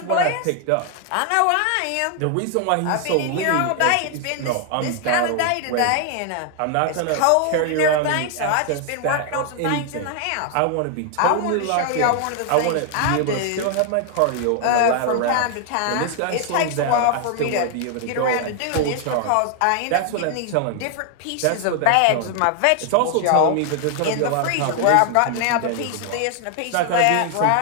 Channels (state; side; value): different; both; correlation 0.00